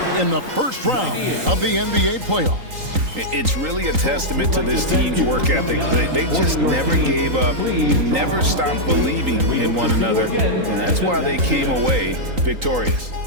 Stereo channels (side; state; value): left; late; 3.8 ms